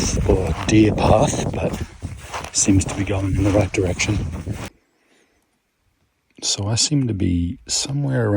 or deer path, but seems to be going in the right direction. So I seem to be somewhere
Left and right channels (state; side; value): identical; both; correlation 1.00